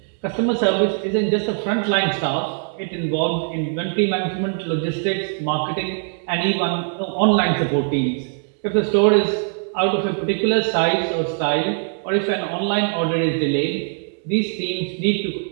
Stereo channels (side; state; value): left; silent; 57 dB below the other